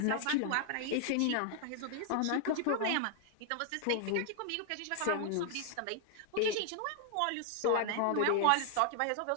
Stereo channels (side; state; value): both; different; correlation 0.00